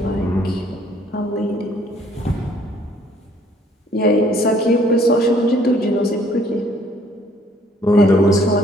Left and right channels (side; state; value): both; normal; correlation 0.61